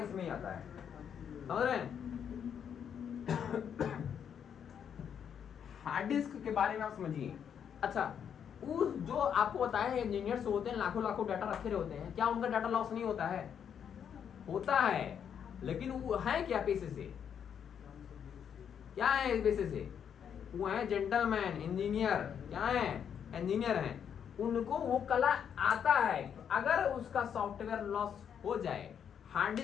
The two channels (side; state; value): right; quieter; 8.1 dB